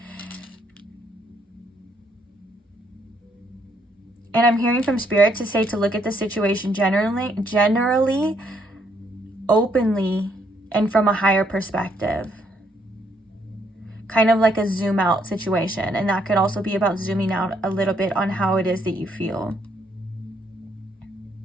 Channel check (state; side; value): normal; both; correlation 0.71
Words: And I'm hearing from Spirit to say to look at the situation generally, openly, and from a higher perspective. Kind of like a zoom out situation. And that could also be about zooming out a little bit on how it is that you feel.